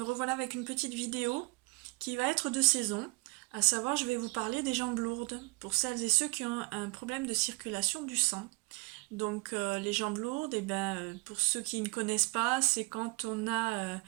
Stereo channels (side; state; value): left; quieter; 28.4 dB